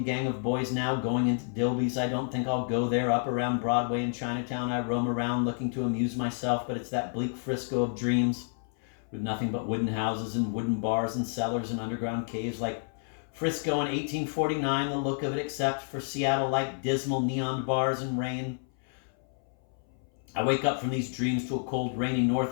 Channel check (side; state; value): right; silent; 58 dB below the other